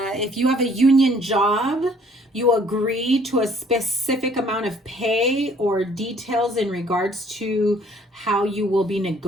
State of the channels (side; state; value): both; normal; correlation 0.59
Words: you have a union job, you agree to a specific amount of pay or details in regards to how you will be